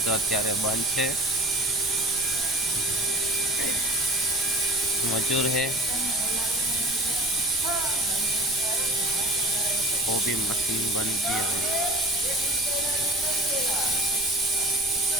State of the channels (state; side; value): noise; right; rumble, 19 dB below the sound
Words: તો અત્યારે બંધ છે. मजूर है वो भी मशीन बन गया है.